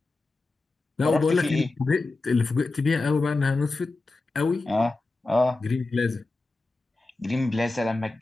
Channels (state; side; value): quieter; right; 3.3 dB